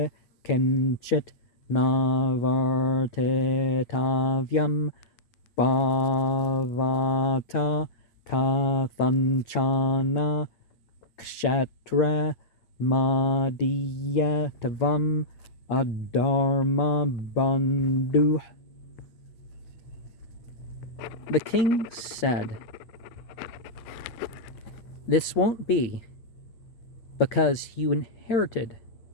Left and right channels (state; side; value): late; right; 8.7 ms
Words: Kenchit Navartetavyam Bhavata Tathanchana Kshetra Madhyatavam Adharma Bandhu. The king said, "This won't be, because you inherited